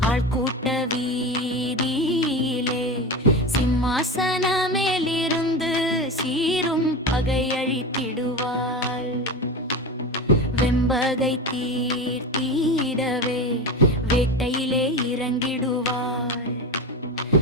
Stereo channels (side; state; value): both; normal; correlation 0.24